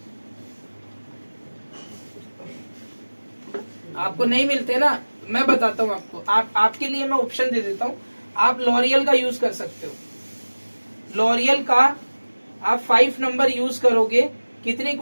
आपको नहीं मिलते ना, मैं बताता हूँ आपको। आपके लिए मैं ऑप्शन दे देता हूँ। आप लॉरियल का यूज कर सकते हो। लॉरियल का आप 5 नंबर यूज करोगे, कितनी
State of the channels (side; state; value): both; inverted; correlation -1.00